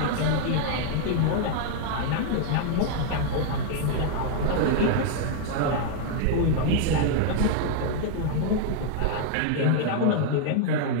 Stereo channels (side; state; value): both; different; correlation 0.00